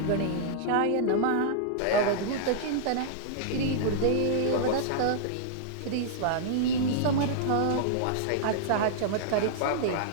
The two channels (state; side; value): different; both; correlation -0.01